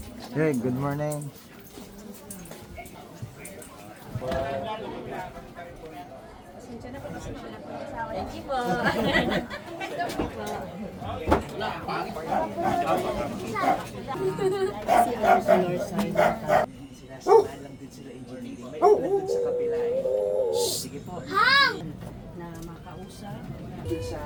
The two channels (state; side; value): identical; both; correlation 1.00